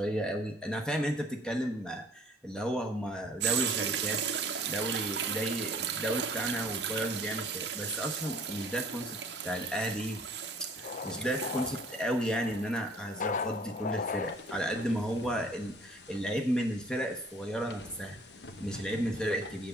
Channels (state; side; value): normal; both; correlation 0.54